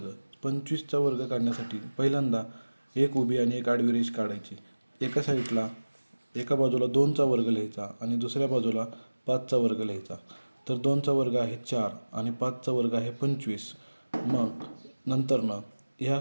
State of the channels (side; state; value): both; inverted; correlation -1.00